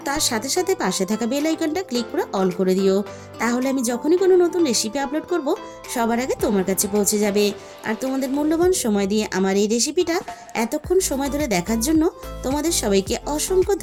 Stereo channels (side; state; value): both; identical; correlation 1.00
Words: তার সাথে সাথে পাশে থাকা বেল আইকনটা ক্লিক করে অল করে দিও, তাহলে আমি যখনই কোনো নতুন রেসিপি আপলোড করব সবার আগে তোমার কাছে পৌঁছে যাবে। আর তোমাদের মূল্যবান সময় দিয়ে আমার এই রেসিপিটা এতক্ষণ সময় ধরে দেখার জন্য তোমাদের সবাইকে অসংখ্য